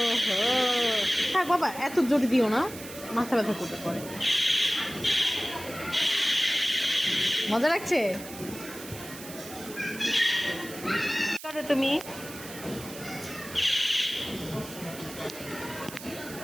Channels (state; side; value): noise; right; hiss, 14 dB below the sound